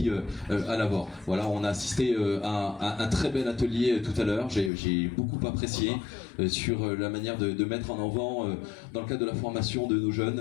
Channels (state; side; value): drops out; right; at 4.7 s